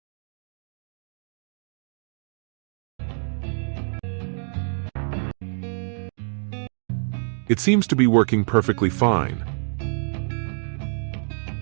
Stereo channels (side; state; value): left; silent; 59 dB below the other